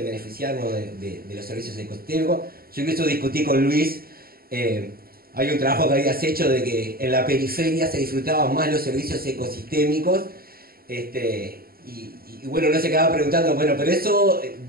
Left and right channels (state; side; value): late; left; 0.43 ms